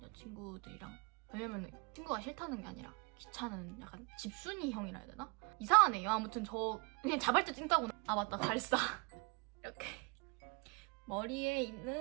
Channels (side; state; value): left; quieter; 31.3 dB